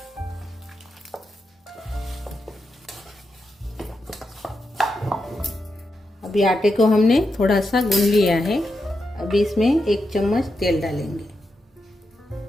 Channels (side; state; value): both; normal; correlation 0.86